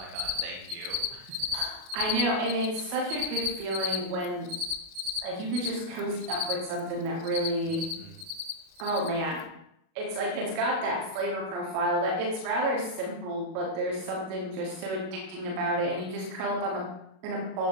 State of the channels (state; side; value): late; left; 37 ms